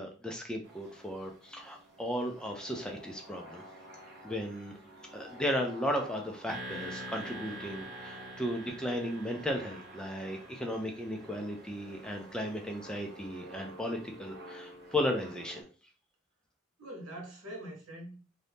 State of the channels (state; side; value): normal; both; correlation 0.63